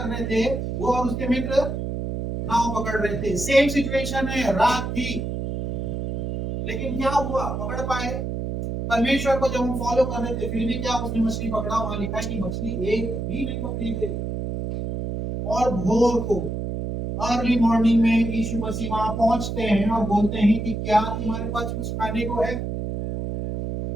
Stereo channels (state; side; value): noise; right; hum, 4 dB below the sound